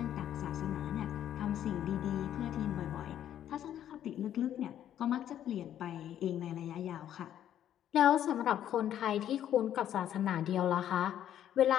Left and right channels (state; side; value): quieter; right; 10.8 dB